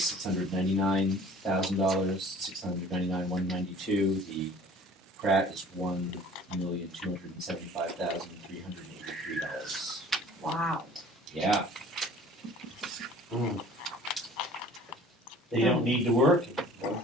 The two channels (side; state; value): both; normal; correlation 0.49